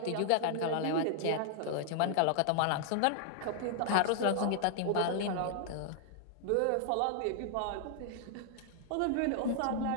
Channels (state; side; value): different; both; correlation -0.01